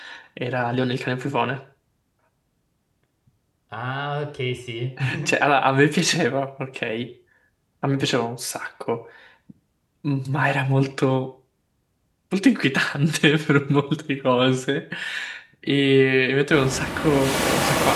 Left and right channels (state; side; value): identical; both; correlation 1.00